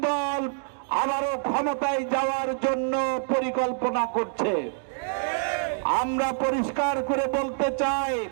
দল আবারও ক্ষমতায় যাওয়ার জন্য পরিকল্পনা করছে। আমরা পরিষ্কার করে বলতে চাই,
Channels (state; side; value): silent; left; digital silence